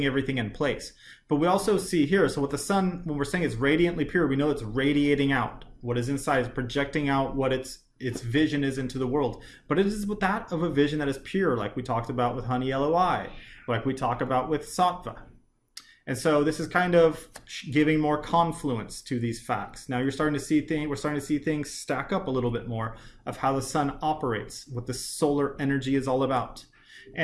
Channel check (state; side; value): identical; both; correlation 1.00